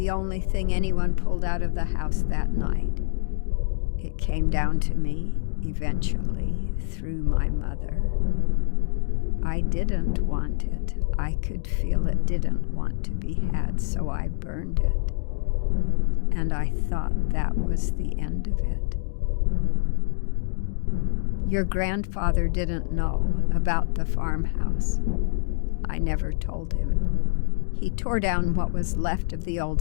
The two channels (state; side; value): silent; right; digital silence